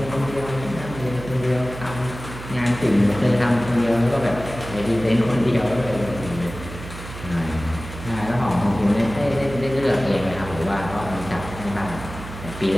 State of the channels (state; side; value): noise; right; hum, 12 dB below the sound